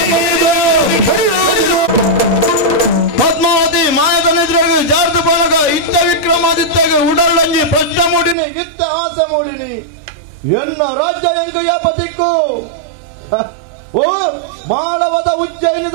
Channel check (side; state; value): left; drops out; at 8.3 s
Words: ಪದ್ಮಾವತಿ ಮಾಯದ ನಿದ್ರೆಗೆ ಜಾರ್ದು ಬಳಗ ಇತ್ತ ವಿಕ್ರಮಾದಿತ್ಯಗೆ ಉಡರ್ಲಂಜಿ ಪಷ್ಟ ಮೂಡಿನಿ ಇತ್ತ ಆಸ ಮೂಡಿನಿ ಎನ್ನ ರಾಜ್ಯ ಎಂಗಯ್ಯ ಪತಿಕ್ಕು ಓ ಮಾಳವದ